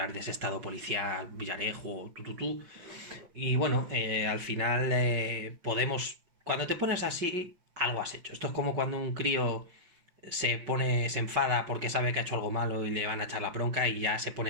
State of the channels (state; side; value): late; left; 5.7 ms